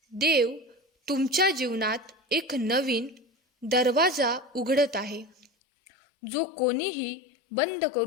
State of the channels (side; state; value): right; drops out; at 5.5 s